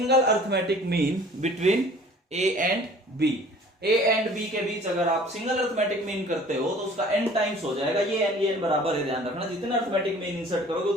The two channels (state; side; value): normal; both; correlation 0.49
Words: arithmetic mean between a and b। a and b के बीच अगर आप single arithmetic mean करते हो तो उसका n टाइम्स हो जाएगा। ये n बराबर है, ध्यान रखना, जितना अर्थमेटिक मीन इंसर्ट करोगे